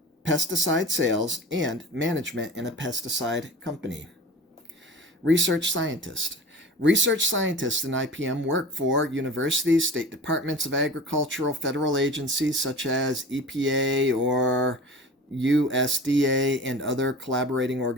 pesticide sales, and management in a pesticide company. Research scientist. Research scientists in IPM work for universities, state departments of agricultural, federal agencies such as EPA or USDA, and other collaborating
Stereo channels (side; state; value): both; normal; correlation 0.37